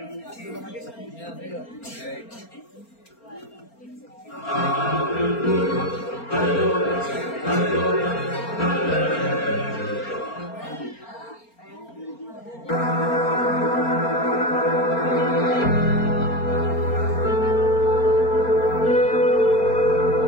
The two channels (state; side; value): late; right; 4.3 ms